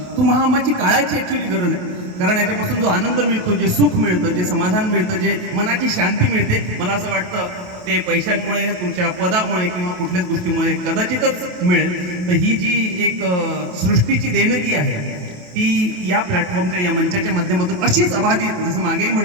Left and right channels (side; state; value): left; late; 28 ms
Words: तुमची काळाची ॲक्च्युली गरज आहे. कारण याच्यापासून जो आनंद मिळतो, जे सुख मिळतं, जे समाधान मिळतं, जे मनाची शांती मिळते, मला असं वाटतं ते पैशांमुळे, तुमच्या पदामुळे किंवा कुठल्याच गोष्टीमुळे कदाचितच मिळेल. तर ही जी एक सृष्टीची देणगी आहे ती या प्लॅटफॉर्मच्या, या मंचाच्या माध्यमातून अशीच अबाधित, जसं मागेही